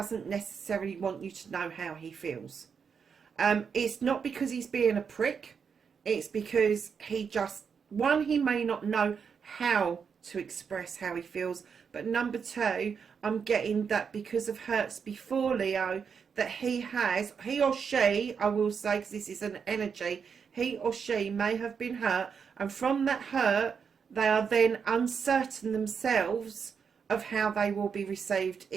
necessarily want you to know how he feels. It's not because he's being a prick. It's because he just, one, he may not know how to express how he feels. But number 2, I'm getting that because of hurts before, Leo, that he or she, I will say, because this is an energy, he or she may have been hurt. And from that hurt, they are then uncertain themselves of how they will be received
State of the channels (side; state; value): left; quieter; 6.4 dB